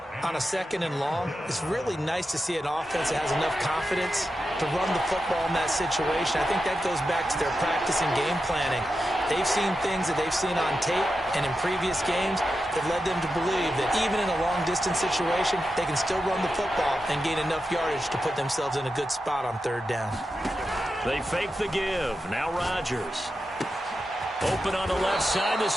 On a 2nd and long, it's really nice to see an offense that has enough confidence to run the football in that situation. I think that goes back to their practice and game planning. They've seen things that they've seen on tape and in previous games that led them to believe that even in a long-distance situation, they can still run the football and gain enough yardage to put themselves in a good spot on 3rd down. They fake the give. Now Rodgers. Open on the left side.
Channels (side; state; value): both; normal; correlation 0.90